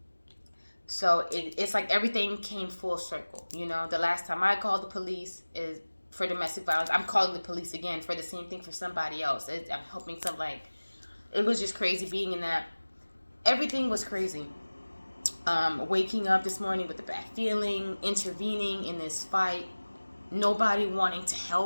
So it's like everything came full circle. You know, the last time I called the police is for domestic violence. I'm calling the police again for the same thing for somebody else. I'm helping some, like, it was just crazy being in that. Everything was crazy. Waking up this morning with a bad feeling, intervening in this fight, nobody wanting to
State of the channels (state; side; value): inverted; both; correlation -1.00